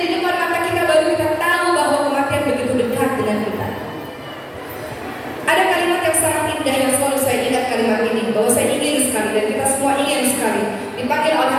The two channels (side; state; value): both; identical; correlation 1.00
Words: depan mata kita, baru kita tahu bahwa kematian begitu dekat dengan kita. Ada kalimat yang sangat indah yang selalu saya ingat kalimat ini, bahwa saya ingin sekali dan kita semua ingin sekali dipanggil oleh